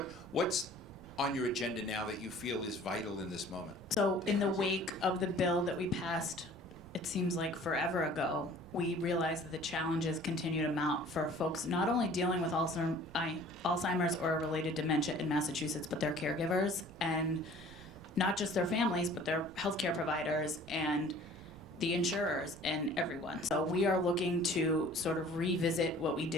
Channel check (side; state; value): right; noise; rumble, 20 dB below the sound